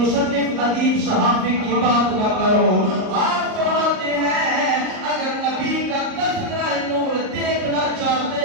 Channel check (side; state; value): left; late; 38 ms